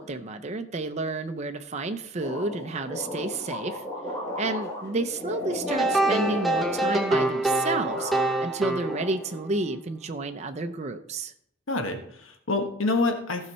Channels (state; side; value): normal; both; correlation 0.48